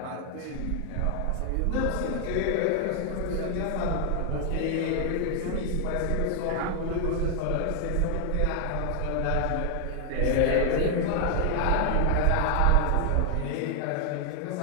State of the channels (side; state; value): both; different; correlation 0.00